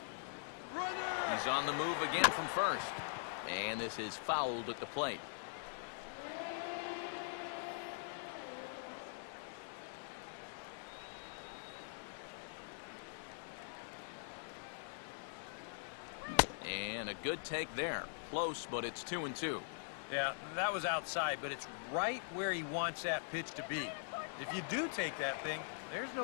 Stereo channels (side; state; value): right; silent; digital silence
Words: He's on the move again from first. And this is fouled at the plate. And a good take there. Close, but it's 2-2. Yeah, that was outside, but it's right where he wants that pitch to be. If you do take that thing, there's no